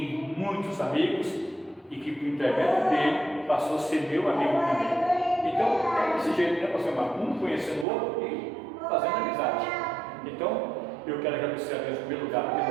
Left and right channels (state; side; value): drops out; left; at 7.9 s